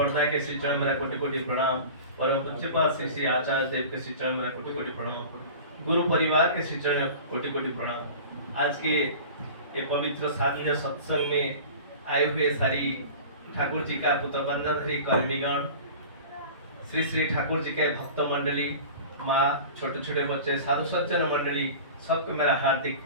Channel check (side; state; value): both; inverted; correlation -0.37